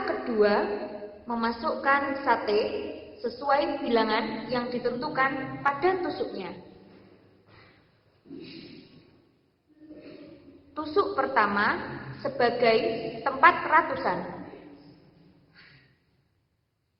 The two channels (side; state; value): both; identical; correlation 1.00